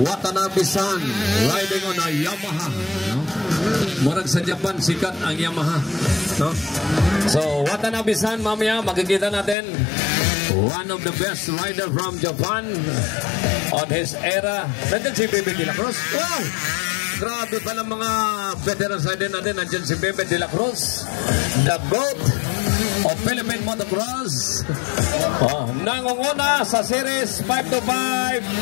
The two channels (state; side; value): drops out; right; at 9.6 s